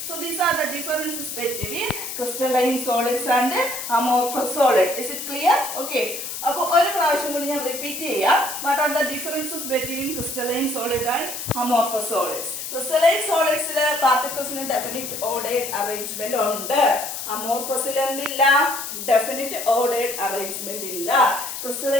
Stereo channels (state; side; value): noise; left; hiss, 6 dB below the sound